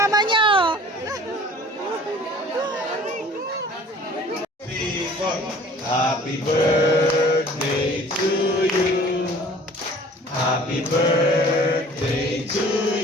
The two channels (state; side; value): normal; both; correlation 0.49